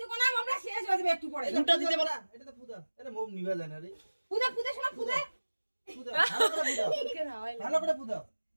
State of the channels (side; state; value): both; inverted; correlation -1.00